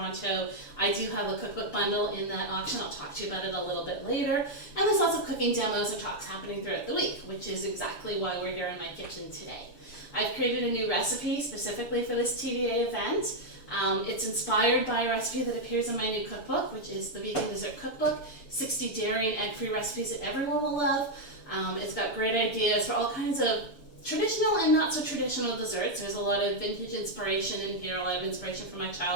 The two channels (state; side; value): late; right; 6.8 ms